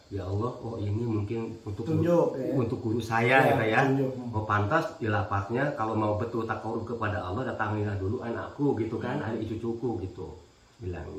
ya Allah, oh ini mungkin untuk guru saya ya. Oh pantas di lapaknya kalau mau betul takut kepada Allah, datangilah dulu anakku gitu kan, adik cucuku gitu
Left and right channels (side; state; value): both; identical; correlation 1.00